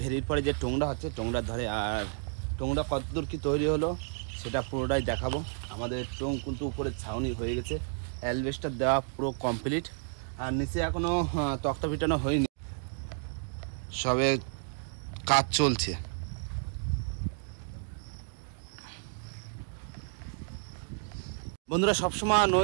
পরে যে টোংরা হচ্ছে টোংরার ধারে। আর টোংরা কতদূর কি তৈরি হলো সেটা পুরোটাই দেখাবো। আমাদের টোং কিন্তু উপরে ছাউনি হয়ে গেছে, অ্যালবেস্টার দেওয়া পুরো কমপ্লিট, আর নিচে এখনো তক্তা পিটানো হয়নি, সবে কাজ চলছে। বন্ধুরা সবসময়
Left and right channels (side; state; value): left; silent; 57 dB below the other